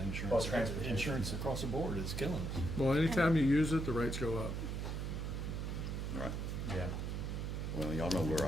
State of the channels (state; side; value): noise; right; hum, 3 dB below the sound